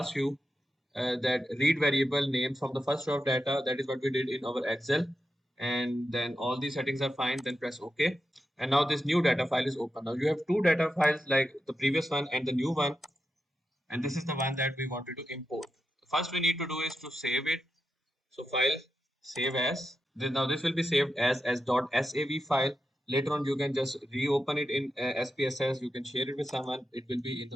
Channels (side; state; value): both; normal; correlation 0.88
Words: you that read variable name from the first row of data. That is what we did in our Excel. And then all these settings are fine, then press OK. And now this new data file is open. Now you have two data files, like the previous one and the new one. And this is the one that we wanted to import. First we need to do is to save it. So file, save as. Now this will be saved as .sav file. Later on you can just reopen it in SPSS. You can share it with someone. It will be in